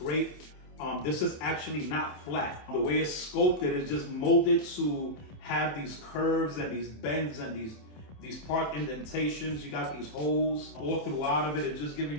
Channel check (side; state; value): right; late; 27 ms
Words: This is actually not flat. The way it's sculpted is just molded to have these curves and these bends and these part indentations. You got these holes all throughout of it. It's just giving